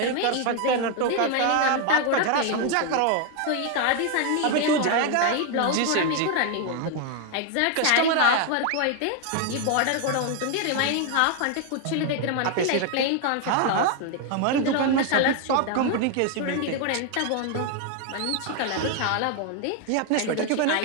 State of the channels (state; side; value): different; both; correlation 0.01